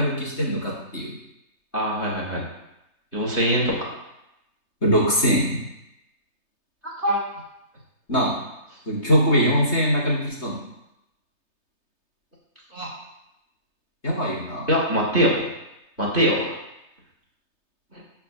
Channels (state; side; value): late; right; 3.3 ms